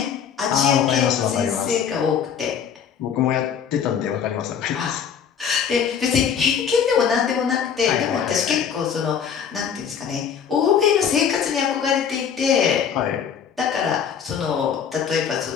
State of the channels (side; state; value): right; quieter; 7.6 dB